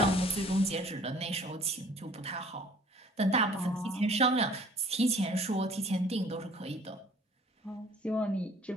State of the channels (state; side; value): normal; both; correlation 0.52